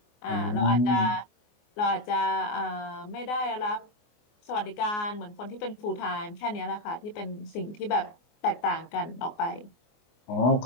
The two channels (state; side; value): late; right; 24 ms